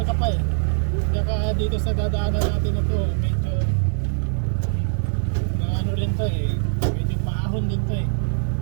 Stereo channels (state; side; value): silent; left; 57 dB below the other